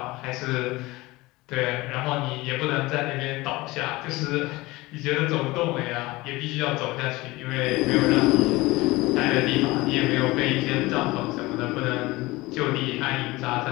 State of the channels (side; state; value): right; quieter; 20.8 dB